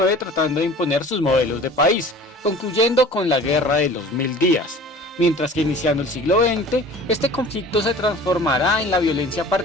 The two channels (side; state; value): both; normal; correlation 0.44